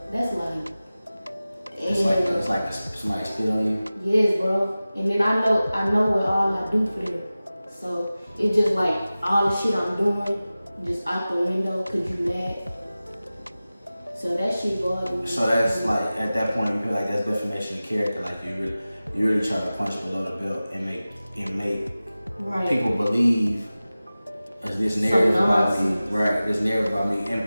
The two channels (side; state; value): both; inverted; correlation -0.96